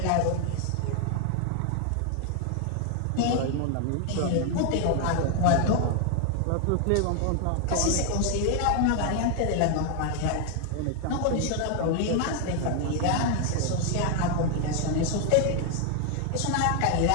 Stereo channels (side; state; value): both; different; correlation 0.00